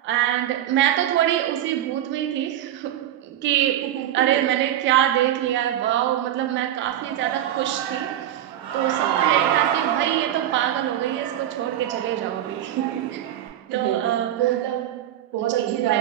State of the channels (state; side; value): quieter; left; 11.9 dB